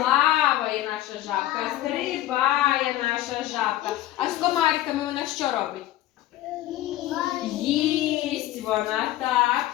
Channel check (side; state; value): right; quieter; 14.6 dB